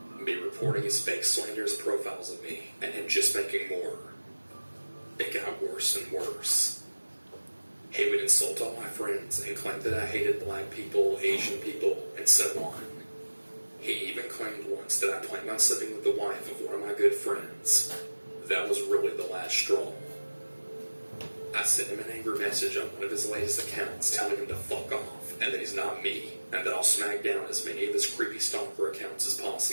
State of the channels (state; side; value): inverted; both; correlation -1.00